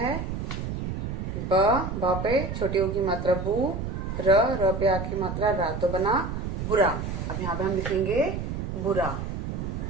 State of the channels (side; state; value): right; noise; rumble, 4 dB below the sound